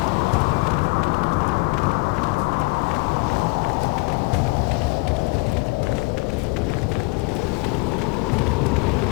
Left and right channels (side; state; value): right; quieter; 27.2 dB